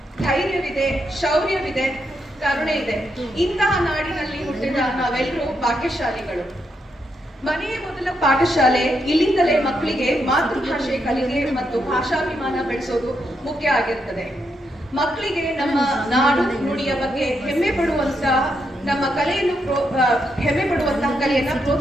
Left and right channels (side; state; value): both; normal; correlation 0.81